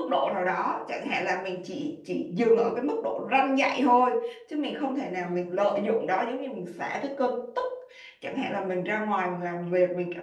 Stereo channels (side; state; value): both; identical; correlation 1.00